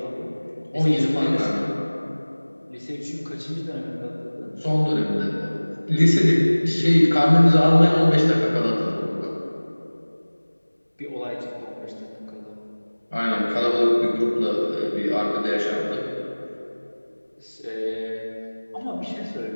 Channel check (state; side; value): inverted; both; correlation -1.00